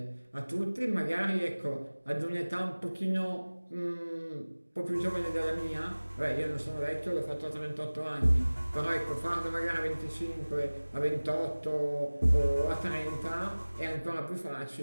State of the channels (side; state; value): both; inverted; correlation -1.00